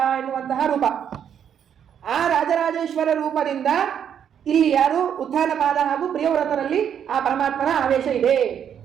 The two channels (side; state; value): left; quieter; 8.7 dB